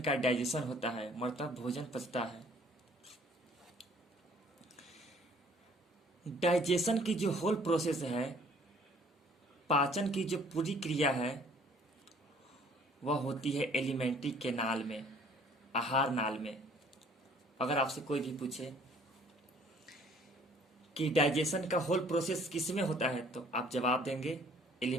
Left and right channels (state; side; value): normal; both; correlation 0.57